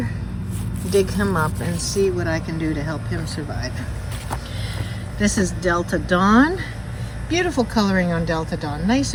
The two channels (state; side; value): identical; both; correlation 1.00